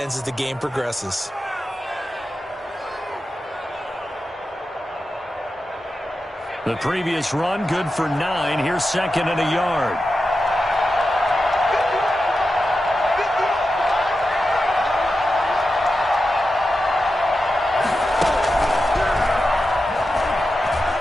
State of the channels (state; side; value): normal; both; correlation 0.91